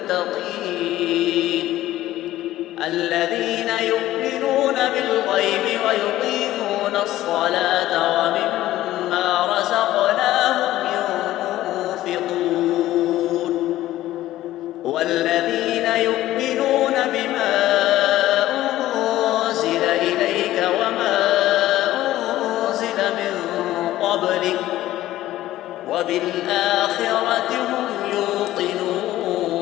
الذين يؤمنون بالغيب ويقيمون الصلاة ومما رزقناهم ينفقون والذين يؤمنون بما أنزل إليك وما أنزل من قبلك وبالآخرة هم يوقنون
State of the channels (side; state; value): right; quieter; 14.8 dB